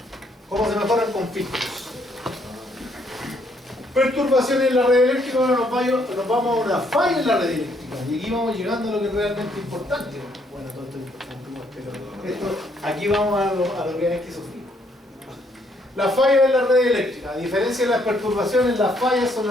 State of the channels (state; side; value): normal; both; correlation 0.70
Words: ¿Cómo se mejoran con filtros? Perturbaciones en la red eléctrica. Ahora nos vamos a una falla en la red eléctrica. Y aquí vamos llegando a lo que es realmente importante. Bueno, todo esto es importante, pero aquí vamos a lo que hay que sufrir. La falla en la red eléctrica. A diferencia de las perturbaciones, las fallas son